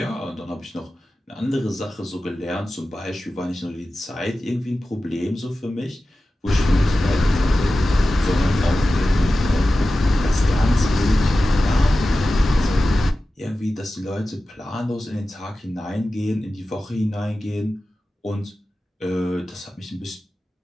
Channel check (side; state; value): both; normal; correlation 0.94